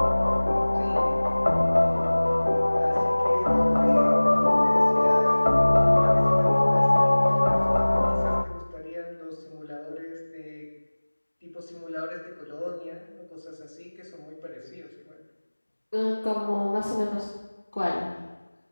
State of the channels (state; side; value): inverted; both; correlation -1.00